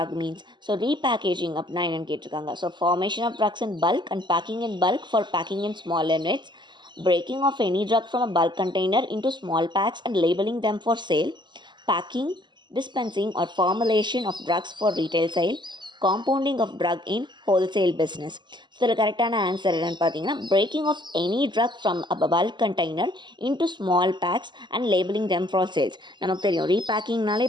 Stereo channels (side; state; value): left; late; 0.22 ms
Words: means. So repackaging அப்படின்னா என்னென்னு கேட்டிருக்காங்க. So formation of drugs in bulk and packing in bulk for packing in small units, breaking of any drug from a bulk container into small packs and labeling them for sale, packing, dispensing or formulation of drugs for retail sale, compounding of drug in wholesale business. So இதில் கரெக்டான answer என்னென்னு பார்த்தீங்கன்னா breaking of any drug from a bulk container into small packs and labeling them for sales. நமக்கு தெரியும் ரீபேக்கிங்னாலே